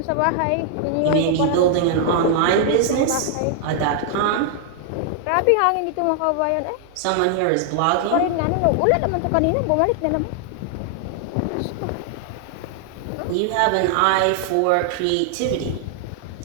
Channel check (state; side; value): different; both; correlation -0.01